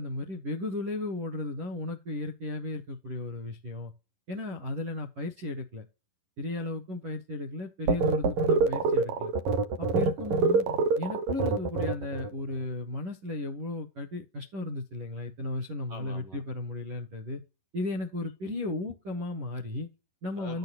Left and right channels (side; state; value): left; late; 11 ms